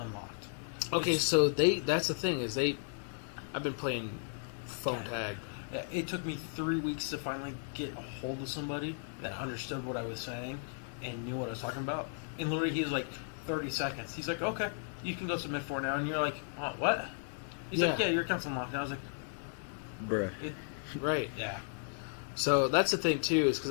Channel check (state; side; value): silent; right; digital silence